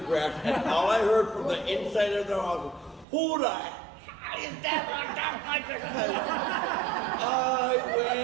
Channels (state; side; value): drops out; left; at 3.1 s